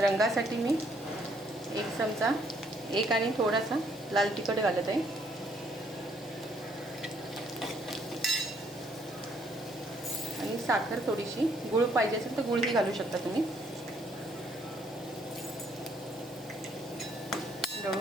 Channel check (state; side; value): normal; both; correlation 0.67